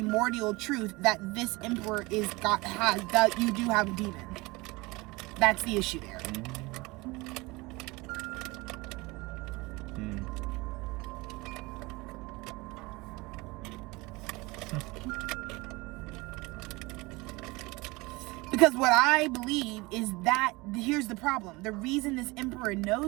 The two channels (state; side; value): quieter; left; 23.5 dB